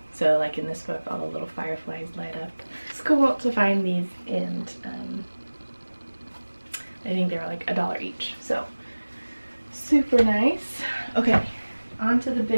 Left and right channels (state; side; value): inverted; both; correlation -1.00